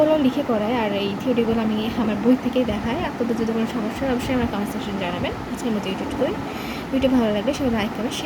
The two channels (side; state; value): both; identical; correlation 1.00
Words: লিখে করাই আর এই থিওরিগুলো আমি আমার বই থেকেই দেখাই। আপনাদের যদি কোনো সমস্যা হয় অবশ্যই আমার কমেন্ট সেকশনে জানাবেন। আজকের মতো ভিডিও ভালো লাগলে সবাই লাইক করবেন,